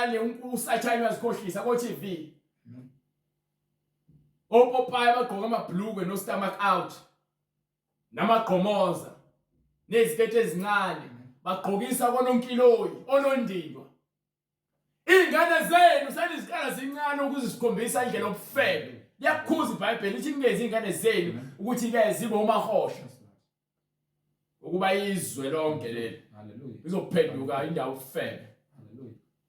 usathane uyazikhohlisa ko-TV. Opopayi bagqoka amabhlukwe no stomach out. Namagqomoza nezikete ezincane bagqokisa kononkiloyi onondindwa. Ingane zenu seniziqala zincane ukuze sikhombisa indlela yobufebe. Liyakhuza iBhayibheli lithi ngezi ingane zenu ukuthi ke zibe umahosha. Ukuba izwe lonke leli. Hallelujah. Izophenduka indawo yobufebe. Hallelujah.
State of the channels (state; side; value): identical; both; correlation 1.00